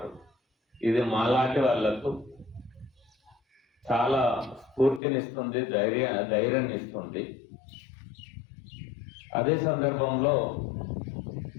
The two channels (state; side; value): drops out; right; at 5.0 s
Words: ఇది మాలాంటి వాళ్లకు చాలా స్ఫూర్తినిస్తుంది, ధైర్యాన్ని ఇస్తుంది. అదే సందర్భంలో